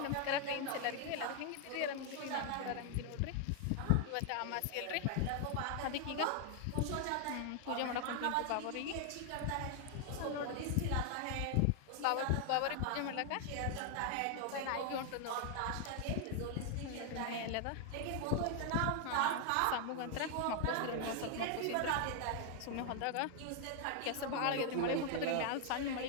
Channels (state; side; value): different; both; correlation 0.00